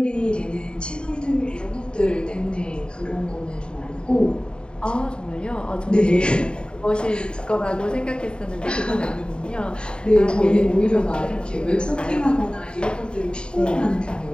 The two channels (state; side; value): late; right; 0.051 ms